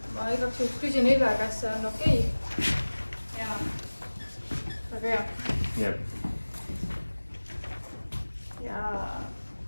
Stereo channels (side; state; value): both; inverted; correlation -1.00